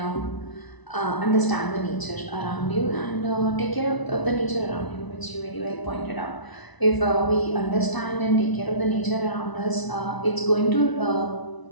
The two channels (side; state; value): right; late; 1.0 ms